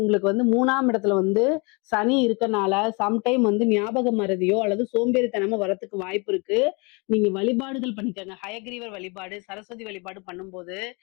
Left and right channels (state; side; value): quieter; right; 30.5 dB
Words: உங்களுக்கு வந்து 3ஆம் இடத்துல வந்து சனி இருக்கனால, சம்டைம் வந்து ஞாபக மறதியோ அல்லது சோம்பேறித்தனமோ வரத்துக்கு வாய்ப்பு இருக்கு. நீங்க வழிபாடுகள் பண்ணிக்கங்க. ஹயக்கிரீவர் வழிபாடு, சரஸ்வதி வழிபாடு பண்ணும்போது,